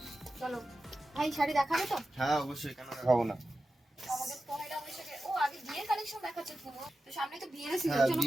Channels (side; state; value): both; normal; correlation 0.93